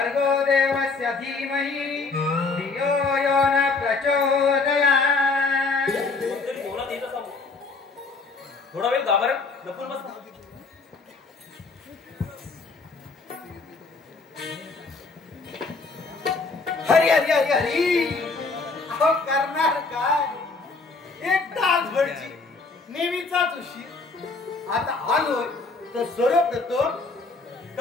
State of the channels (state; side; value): quieter; right; 4.0 dB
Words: देवस्य धीमहि धियो यो न प्रचोदयात्. कोणतरी जेवणात येत असावं. थोडा वेळ गाभाऱ्यात लपून बसला. हरी हरी हरी हरी अहो करणार काय एक तासभरची नेहमीचाच उशीर. आता आलोय तर सर्वप्रथम